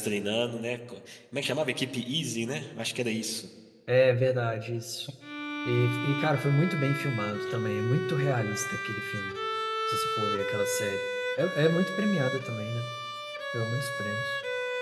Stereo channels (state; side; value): identical; both; correlation 1.00